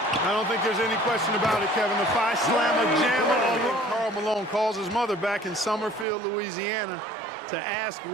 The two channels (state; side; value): drops out; left; at 6.1 s